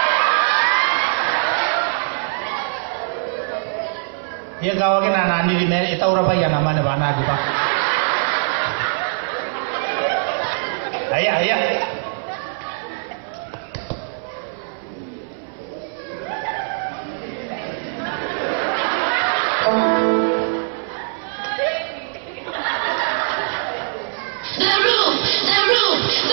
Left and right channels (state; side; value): silent; left; 60 dB below the other